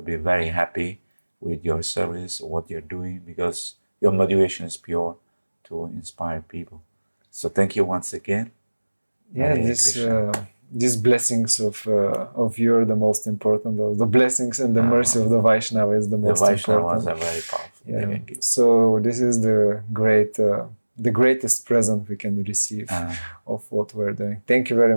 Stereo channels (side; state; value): both; inverted; correlation -1.00